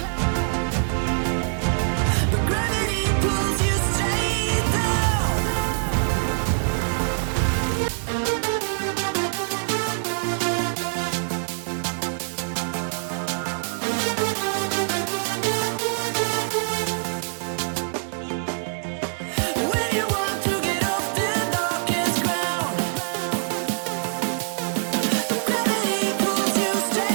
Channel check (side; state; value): left; silent; 60 dB below the other